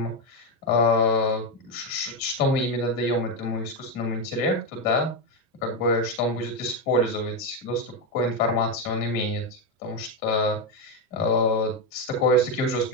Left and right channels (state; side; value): normal; both; correlation 0.08